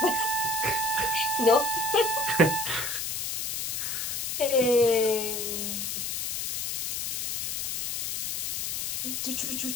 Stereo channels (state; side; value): noise; left; hiss, 2 dB below the sound